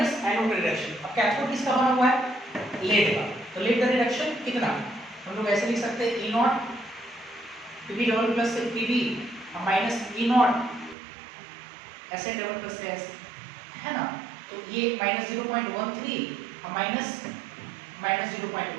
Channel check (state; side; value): drops out; left; at 11.0 s